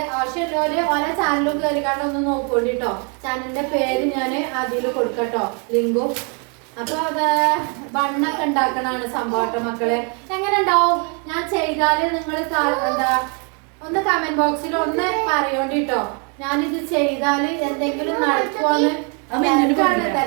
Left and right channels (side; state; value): left; quieter; 37.0 dB